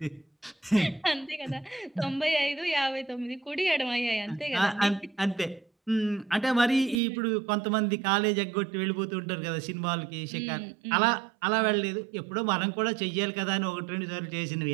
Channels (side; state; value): left; drops out; at 7.0 s